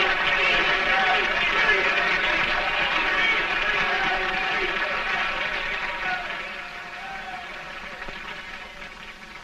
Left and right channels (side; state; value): both; identical; correlation 1.00